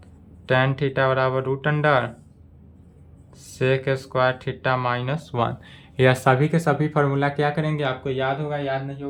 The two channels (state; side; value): identical; both; correlation 1.00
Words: tan theta बराबर root under sec square theta minus 1। यह सभी के सभी फार्मूला क्या करेंगे? आपको याद होगा, याद नहीं